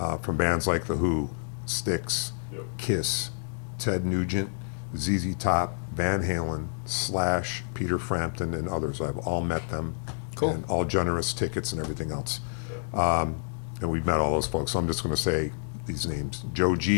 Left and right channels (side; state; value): right; silent; digital silence